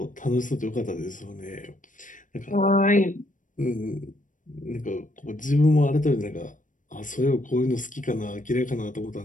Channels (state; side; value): late; right; 0.38 ms